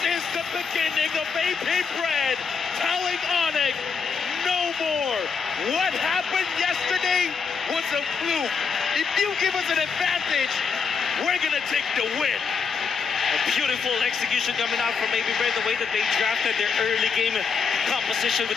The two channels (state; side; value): quieter; right; 5.7 dB